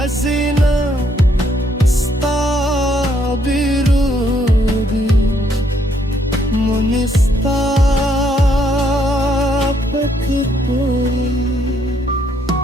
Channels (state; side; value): normal; both; correlation 0.71